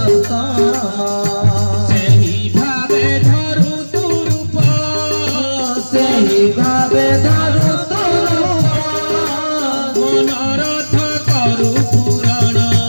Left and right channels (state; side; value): inverted; both; correlation -1.00